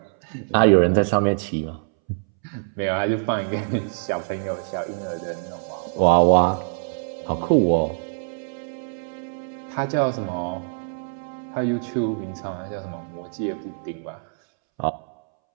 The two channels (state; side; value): silent; left; 62 dB below the other